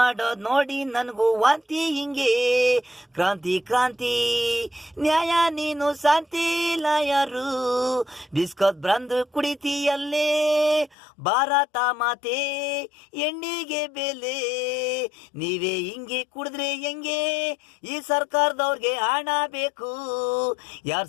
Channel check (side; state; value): right; drops out; at 11.0 s